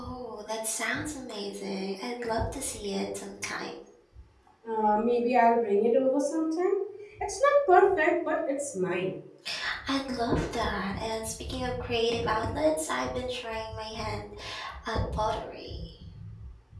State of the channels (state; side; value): identical; both; correlation 1.00